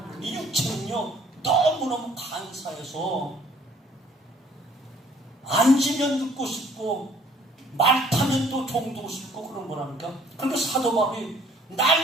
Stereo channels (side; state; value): both; normal; correlation 0.58